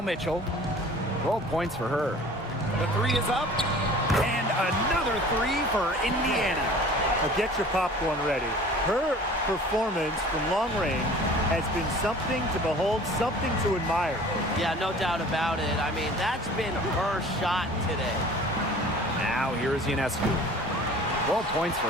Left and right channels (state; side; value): normal; both; correlation 0.45